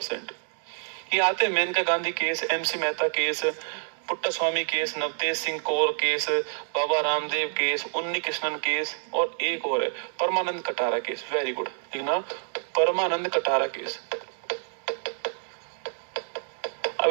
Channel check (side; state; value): left; silent; 60 dB below the other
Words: ये आते हैं Maneka Gandhi case, MC Mehta case, Puttaswamy case, Navtej Singh Kaur case, Baba Ramdev case, Unnikrishnan case, और एक और है Paramanand Katara case. Very good, लिखना परमानंद कटारा केस। अब